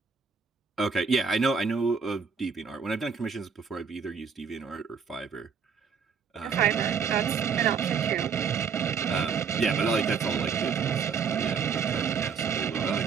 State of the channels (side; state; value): left; quieter; 6.1 dB